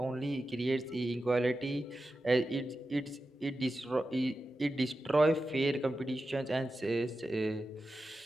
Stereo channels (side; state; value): both; normal; correlation 0.92